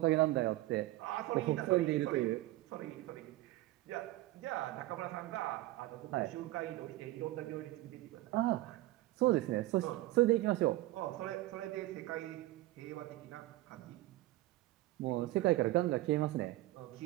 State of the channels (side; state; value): left; quieter; 17.4 dB